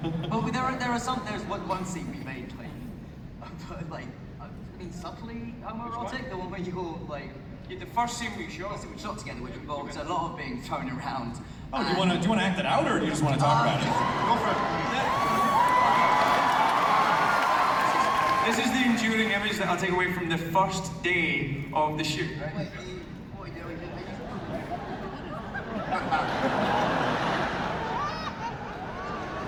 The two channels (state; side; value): identical; both; correlation 1.00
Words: But there's one scene we made like I mean subtly homoerotic, the one where you're like The first scene we shot. we shot together, which involves a lot of being thrown around. Oh, do you want to act it out, or do you just want to talk about it? Go for it. This is the enduring image that I'll take away from the first day of the shoot. Right? Wait, what are you doing?